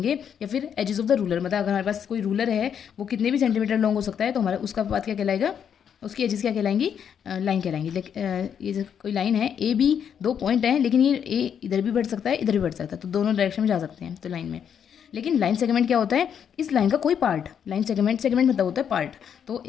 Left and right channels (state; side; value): quieter; right; 8.1 dB